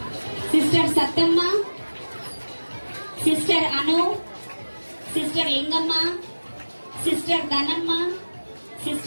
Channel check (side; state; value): both; inverted; correlation -1.00